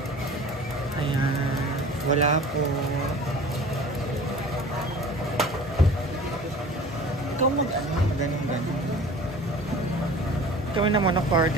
Ayan. Wala po. Ikaw ganun. Kami naman ng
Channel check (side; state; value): both; normal; correlation 0.42